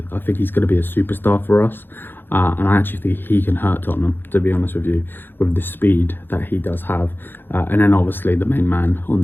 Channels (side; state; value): right; late; 0.099 ms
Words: I think he's going to be a superstar for us, and I actually think he can hurt Tottenham, to be honest with you, with the speed that he does have. And then obviously the main man on